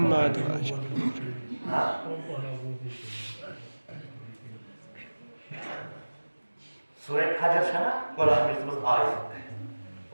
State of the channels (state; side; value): inverted; both; correlation -1.00